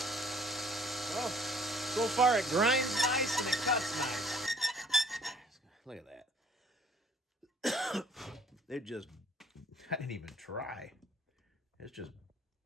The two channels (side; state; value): both; normal; correlation 0.55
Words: Well, so far it grinds nice and it cuts nice. Look at that. It just, I didn't even try. It's just